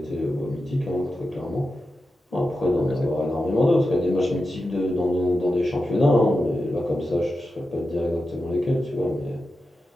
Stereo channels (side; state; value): both; normal; correlation 0.90